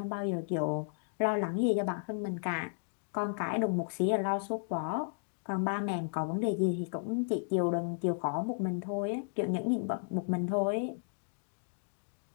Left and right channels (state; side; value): silent; right; digital silence